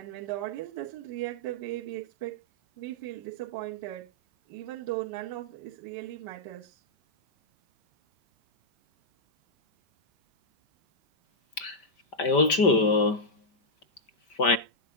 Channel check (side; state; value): right; late; 5.1 ms